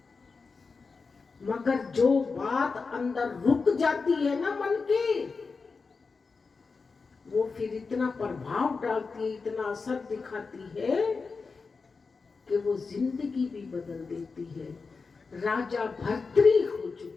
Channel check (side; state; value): right; quieter; 4.6 dB